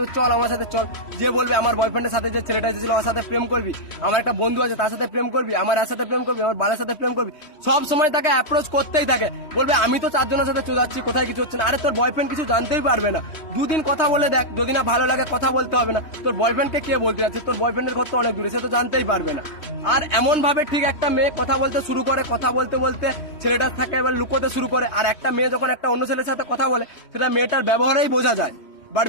চল আমার সাথে চল। যে বলবে আমার বয়ফ্রেন্ডের সাথে যে ছেলেটা এসেছিল ওর সাথে প্রেম করবি, আমার একটা বন্ধু আছে তার সাথে প্রেম করবি, আমার এর সাথে প্রেম করবি, আমার বালের সাথে প্রেম করবি, সব সময় তাকে অ্যাপ্রোচ করতেই থাকে। বলবে আমি তো 4 জনের সাথে চলে কোথায় কিছু হচ্ছে না। আরে তোর বয়ফ্রেন্ড কিছু জানতেই পারবে না, দুদিন কথা বলে দেখ, যদি না ভালো লাগে কথা বলতে হবে না। তোর বয়ফ্রেন্ডকে কে বলতে যাচ্ছে, তোর বয়ফ্রেন্ডের ঘর তো অনেক দূরে, সে তো জানতেই পারবে না। আর এমন ভাবে ঠিক একটা মেয়ে কথা বলতে শুরু করে, কথা বলতে বলতে ছেলেটার থাকে এবার লুকোতে শুরু করে। আর একটা মেয়ে যখন একটা অন্য ছেলের সাথে কথা বলে সেটা মেয়েটার ব্যবহারেই বোঝা যায়। বাট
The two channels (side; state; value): right; late; 3.2 ms